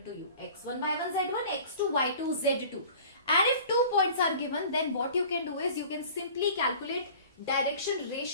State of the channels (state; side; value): inverted; both; correlation -0.45